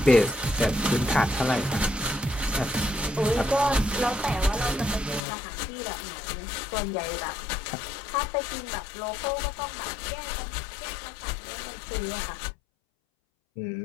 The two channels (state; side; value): drops out; right; at 5.2 s